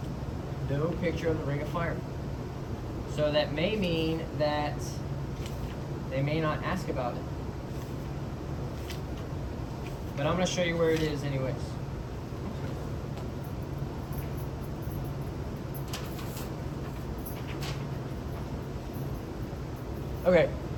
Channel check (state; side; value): identical; both; correlation 1.00